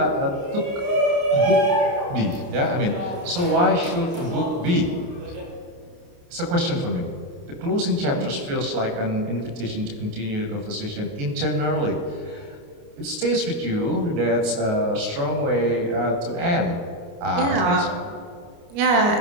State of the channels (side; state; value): left; late; 29 ms